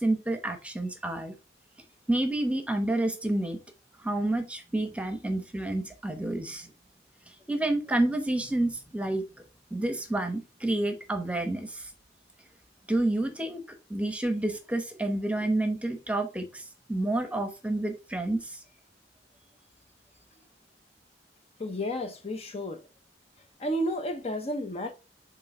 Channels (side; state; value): both; normal; correlation 0.85